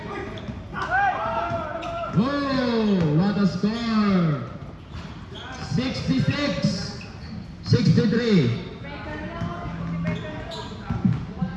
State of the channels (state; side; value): identical; both; correlation 1.00